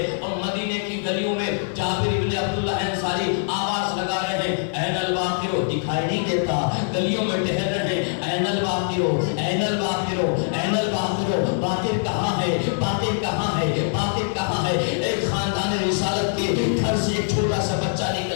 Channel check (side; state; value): right; silent; 61 dB below the other